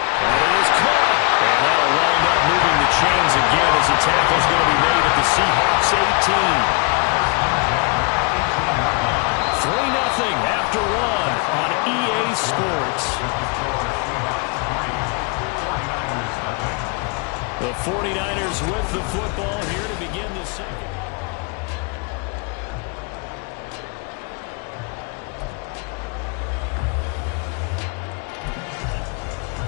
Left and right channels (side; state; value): right; quieter; 33.2 dB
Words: it is caught. And that'll wind up moving the chains again as the tackle's going to be made at the Seahawks 18. 3-0 after 1 on EA Sports. The 49ers with the football here to begin the second.